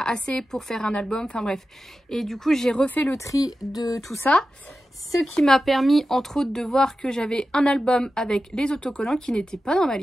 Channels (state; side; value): normal; both; correlation 0.92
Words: pour faire un album, enfin bref, et du coup j'ai refait le tri de tout ça, ce qui m'a permis entre autres de voir que j'avais un album avec les autocollants qui n'étaient pas dans ma